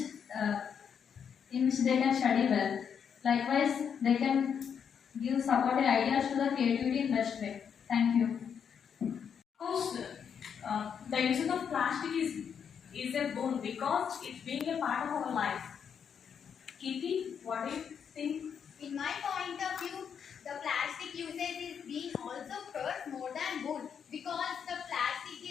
uh, they can study well. Likewise, they can give supportive ideas to the creativity in best way. Thank you. Of course, the usage of plastic is a boon because it's being a part of our life. Kitty, what do you think? In my point of view, the plastic usage is being also curse more than good because the plastic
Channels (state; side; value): quieter; right; 7.4 dB